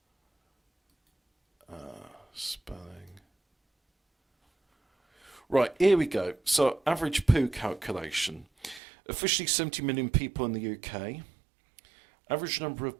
Spelling. Right, here we go. So, average poo calculation. Officially 70 million people in the UK. Average number of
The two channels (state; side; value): drops out; left; at 8.8 s